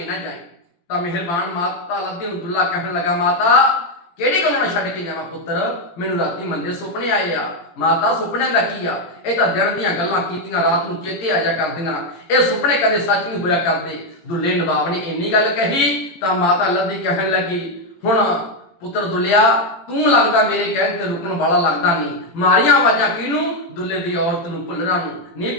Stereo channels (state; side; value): late; right; 17 ms